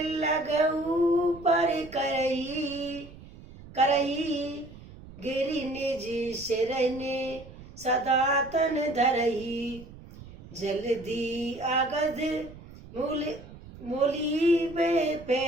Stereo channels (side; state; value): right; noise; rumble, 18 dB below the sound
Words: पर करही, गिरी निज सिरने सदा तन धरही। जल्दी आगध मोली वे